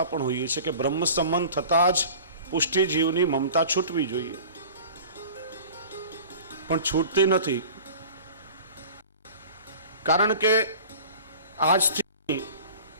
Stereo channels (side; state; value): both; inverted; correlation -0.41